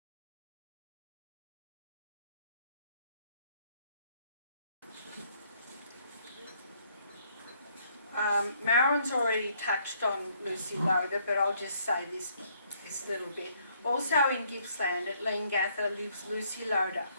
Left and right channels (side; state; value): both; inverted; correlation -0.67